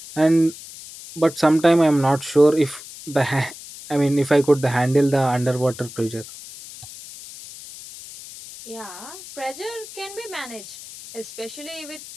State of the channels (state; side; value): noise; left; hiss, 15 dB below the sound